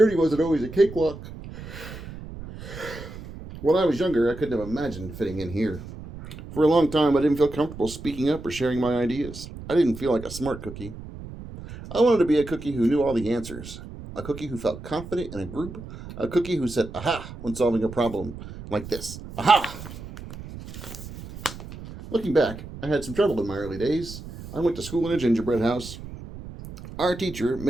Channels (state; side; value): noise; right; rumble, 13 dB below the sound